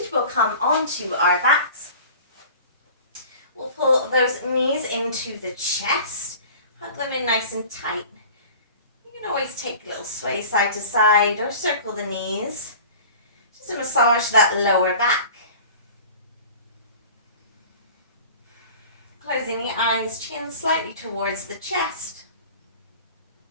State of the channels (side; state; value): both; inverted; correlation -0.41